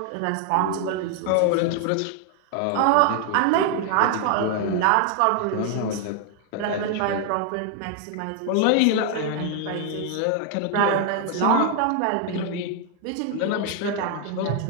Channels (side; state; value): both; different; correlation 0.00